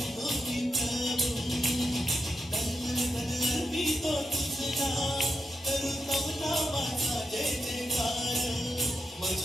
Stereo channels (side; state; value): both; normal; correlation 0.85